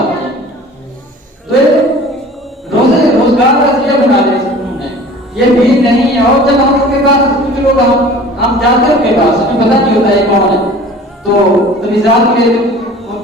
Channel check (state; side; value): normal; both; correlation 0.44